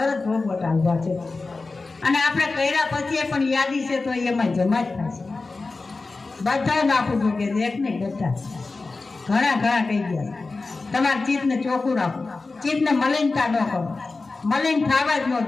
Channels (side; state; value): right; quieter; 3.7 dB